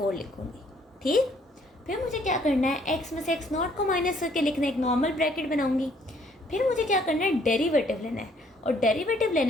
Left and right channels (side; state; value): both; normal; correlation 0.64